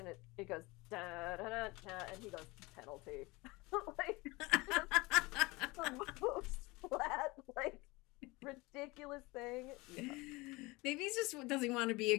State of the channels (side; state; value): right; quieter; 23.4 dB